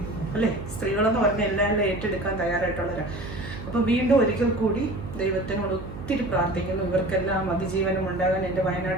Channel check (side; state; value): right; noise; hum, 11 dB below the sound